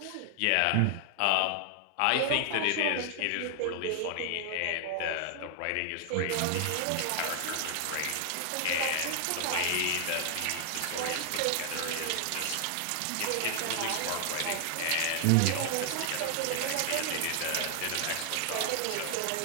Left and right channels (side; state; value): both; different; correlation 0.00